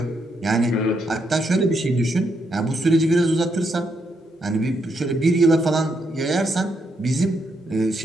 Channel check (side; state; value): both; normal; correlation 0.78